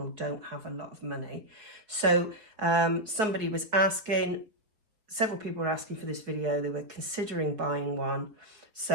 don't have a lot of money. So somebody was asking, several people were asking for this video, they were considering buying one.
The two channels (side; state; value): left; late; 4.8 ms